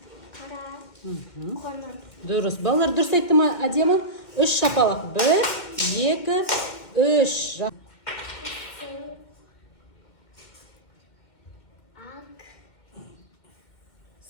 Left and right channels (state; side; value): late; right; 2.1 ms